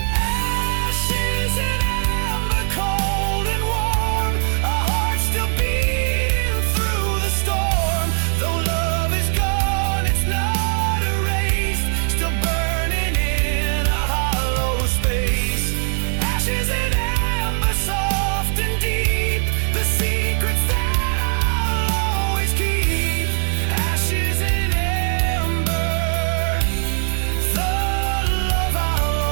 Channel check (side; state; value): left; silent; 60 dB below the other